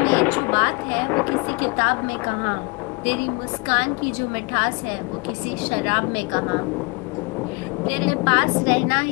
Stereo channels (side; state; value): right; quieter; 29.3 dB